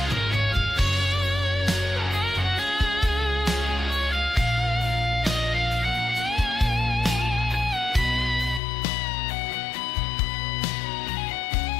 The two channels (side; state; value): right; drops out; at 8.6 s